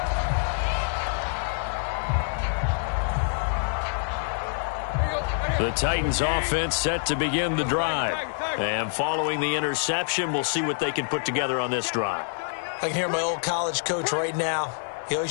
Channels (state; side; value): silent; right; digital silence